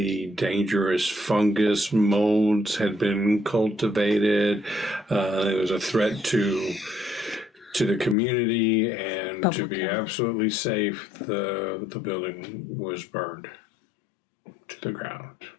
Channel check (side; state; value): right; drops out; at 8.2 s